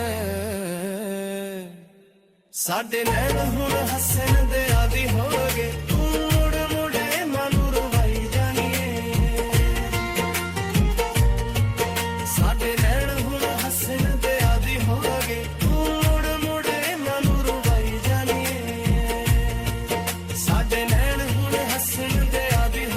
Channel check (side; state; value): both; identical; correlation 1.00